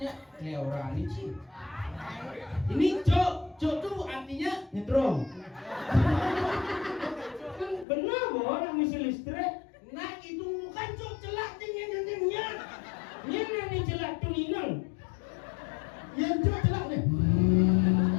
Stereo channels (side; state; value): right; drops out; at 7.9 s